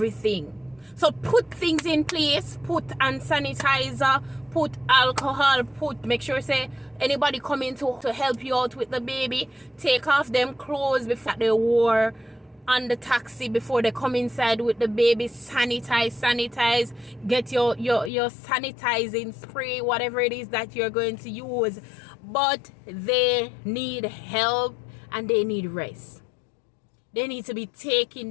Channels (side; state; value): right; drops out; at 18.1 s